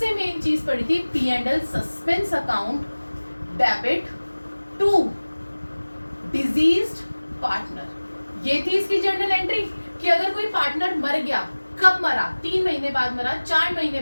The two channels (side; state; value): both; inverted; correlation -1.00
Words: मेन चीज पढ़ी थी P&L suspense account debit to deceased partner. ये थी इसकी जर्नल एंट्री कि अगर कोई पार्टनर मर गया, कब मरा, 3 महीने बाद मरा, 4 महीने